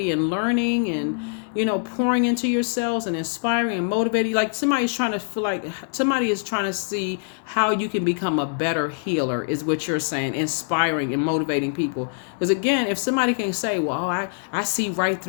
and learning and pouring into yourselves and inspiring and motivating. Like somebody is trying to see how you can become a better healer, is what you're saying, inspiring and motivating people. Because again, if somebody can say, well, I see right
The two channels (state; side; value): silent; right; digital silence